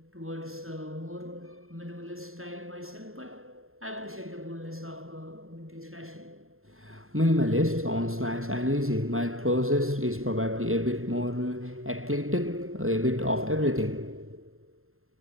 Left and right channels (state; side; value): late; left; 0.61 ms